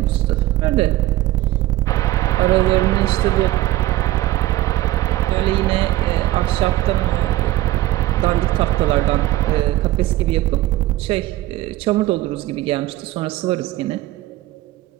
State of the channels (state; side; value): quieter; left; 16.0 dB